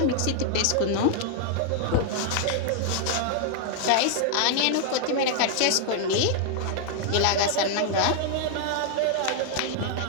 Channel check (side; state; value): both; different; correlation 0.00